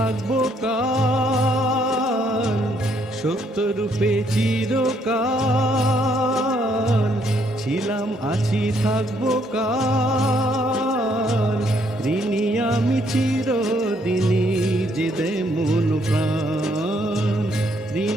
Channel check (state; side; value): normal; both; correlation 0.70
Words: কাল। সত্যরূপে চিরকাল ছিলাম আছি থাকবো কাল। ঋণী আমি চিরদিনই যে দে মন প্রাণ,